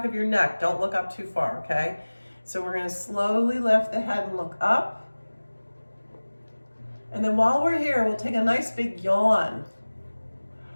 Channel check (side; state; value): both; inverted; correlation -1.00